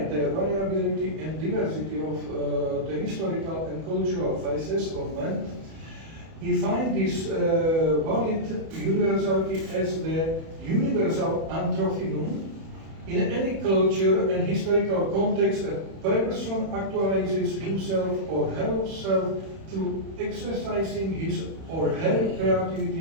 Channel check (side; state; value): left; late; 31 ms